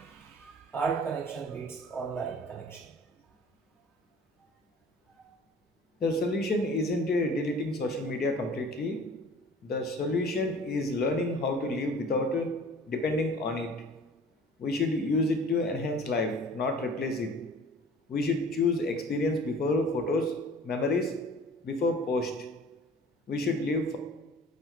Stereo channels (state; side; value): normal; both; correlation 0.46